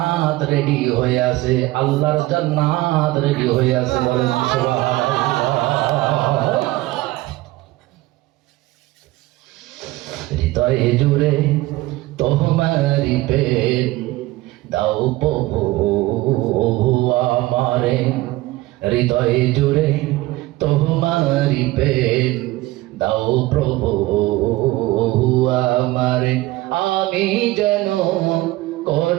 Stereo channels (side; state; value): left; quieter; 18.6 dB